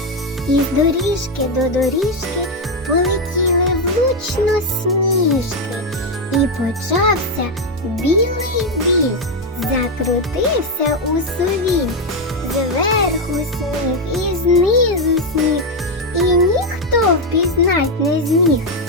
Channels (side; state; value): both; normal; correlation 0.05